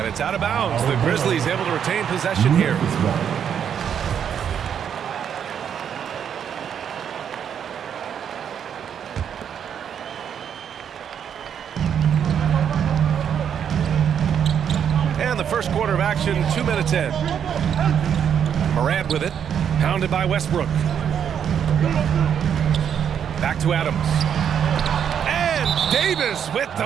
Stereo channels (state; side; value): quieter; left; 8.4 dB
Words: it's out of bounds. The Grizzlies able to retain possession here. And the first quarter of action, 2 minutes in. Morant with it. Pounded by Westbrook. Back to Adams. And Davis with the